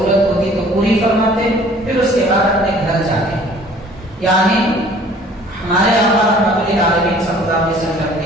ہوتی تو پوری فرماتے، پھر اس کے بعد اپنے گھر جاتے۔ یعنی ہمارے آقا رحمۃ للعالمین صلی اللہ علیہ وسلم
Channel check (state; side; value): normal; both; correlation 0.52